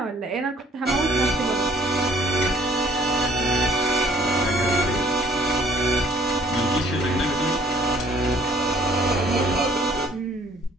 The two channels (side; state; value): both; normal; correlation 0.58